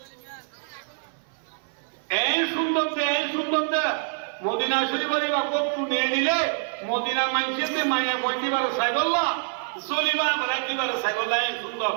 এই সুন্দর দে মদিনা শরীফের বরকত তুলে নিলে মদিনা মানুষের মায়া বন্দিবার সাইবল্লাহ জলিবা বলা কিবার সাইবল্লাহ সুন্দর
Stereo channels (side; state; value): left; silent; 61 dB below the other